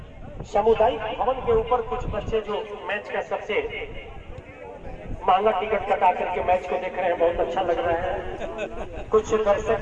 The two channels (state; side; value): identical; both; correlation 1.00